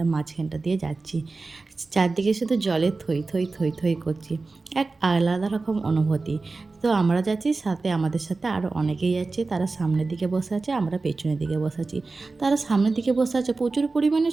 মাঝখানটা দিয়ে যাচ্ছি। চারদিকে শুধু জলে থই থই থই থই করছি, এক আলাদা রকম অনুভূতি। তো আমরা যাচ্ছি, সাথে আমাদের সাথে আরও অনেকেই যাচ্ছে। তারা সামনের দিকে বসে আছে, আমরা পেছনের দিকে বসে আছি। তারা সামনের দিকে বসে আছে, প্রচুর পরিমাণে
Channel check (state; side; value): quieter; left; 3.7 dB